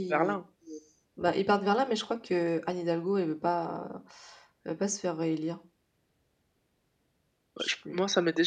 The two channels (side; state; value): both; identical; correlation 1.00